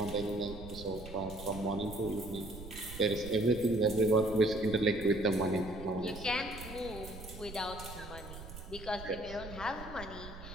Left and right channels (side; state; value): right; noise; rumble, 12 dB below the sound